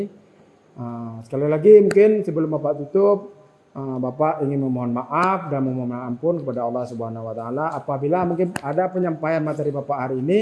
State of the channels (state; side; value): identical; both; correlation 1.00